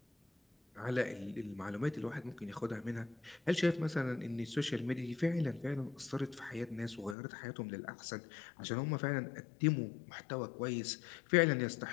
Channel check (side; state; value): right; drops out; at 7.2 s